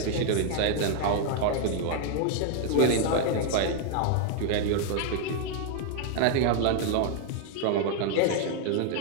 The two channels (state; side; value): different; both; correlation 0.00